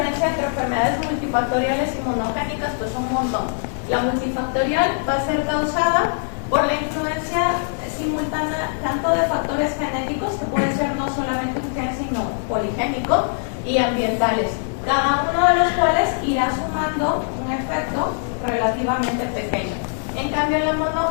entre enfermedades multifactoriales y monogénicas? Pues un montón. La multifactorial va a ser causada por la influencia simultánea tanto de factores genéticos, que puede ser no solamente un gen, sino poligénico, y ambientales, cada uno de los cuales irá sumando un efecto relativamente pequeño. En cambio, la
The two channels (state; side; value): silent; right; digital silence